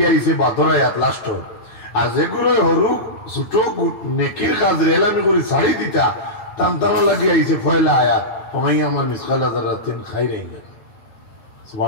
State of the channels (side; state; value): right; late; 9.1 ms